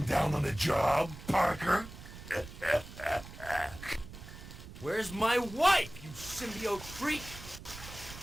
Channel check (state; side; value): noise; right; rumble, 14 dB below the sound